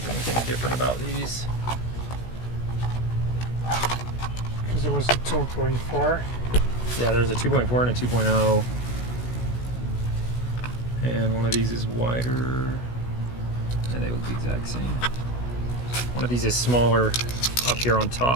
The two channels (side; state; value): right; late; 16 ms